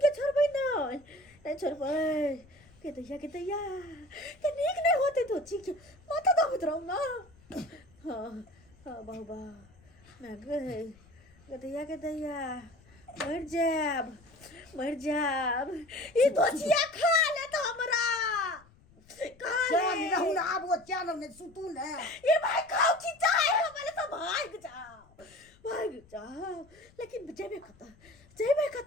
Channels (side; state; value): left; noise; rumble, 27 dB below the sound